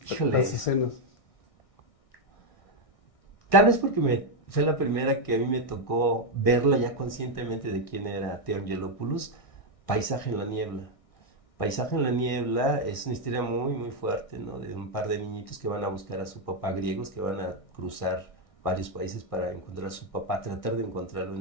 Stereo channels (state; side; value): late; right; 1.6 ms